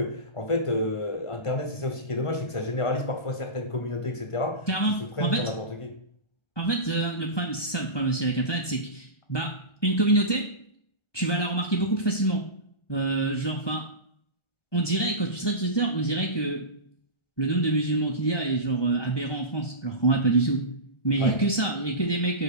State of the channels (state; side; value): late; right; 1.2 ms